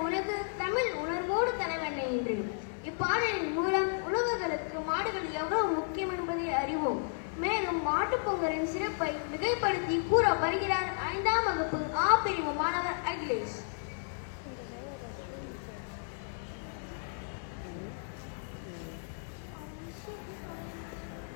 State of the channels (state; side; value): silent; right; digital silence